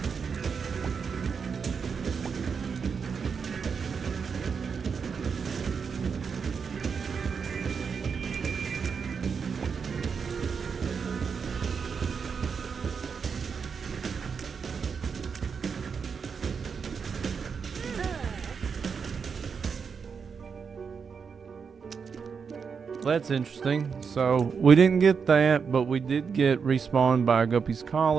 That's interesting. So we didn't get that, but we did get respawned by a Guppy's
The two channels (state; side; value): quieter; left; 6.0 dB